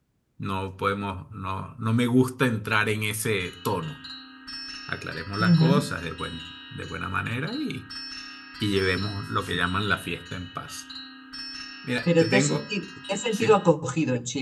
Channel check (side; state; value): both; identical; correlation 1.00